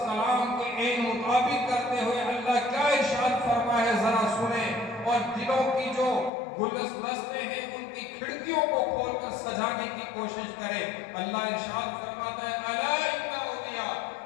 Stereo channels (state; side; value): drops out; right; at 6.3 s